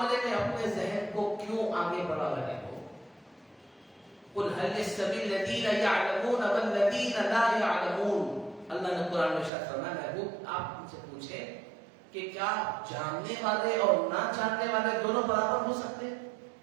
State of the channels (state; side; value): drops out; left; at 9.5 s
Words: میں اپنے ذہن کو کیوں آگے بڑھا رہے ہو؟ قل هل يستوي الذين يعلمون والذين لا يعلمون. اللہ نے قرآن میں ارشاد فرمایا, محبوب آپ ان سے پوچھیں کہ کیا جاننے والے اور نہ جاننے والے دونوں برابر ہو سکتے ہیں؟